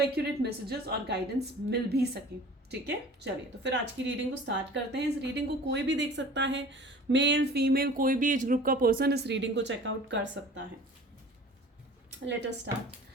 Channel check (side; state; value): both; normal; correlation 0.44